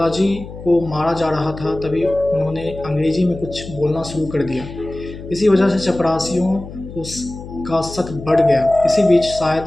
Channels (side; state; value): left; noise; hum, 13 dB below the sound